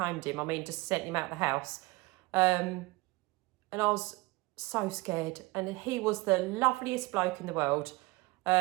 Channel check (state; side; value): quieter; left; 23.1 dB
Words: him, I mean just sent him out of the house. And I was so scared, and he was the loveliest bloke in the world.